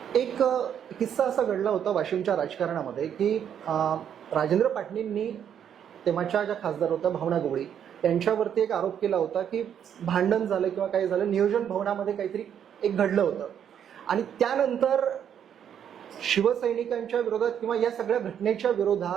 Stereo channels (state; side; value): quieter; left; 8.9 dB